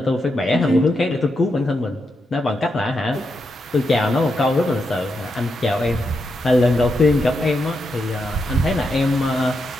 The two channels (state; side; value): normal; both; correlation 0.84